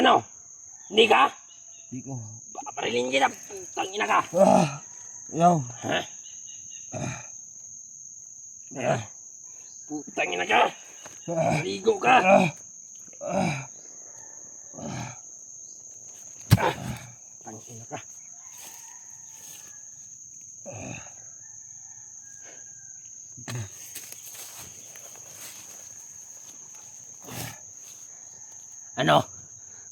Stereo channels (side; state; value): both; identical; correlation 1.00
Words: Hindi ka? Di ko. Babarilin kita! Tangina ka! Yaw. Ha? Putangina ka! Ligo ka! Tangina ka! Ano?